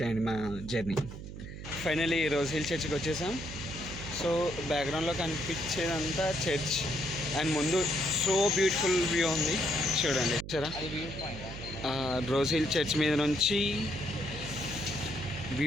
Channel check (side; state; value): right; noise; hum, 10 dB below the sound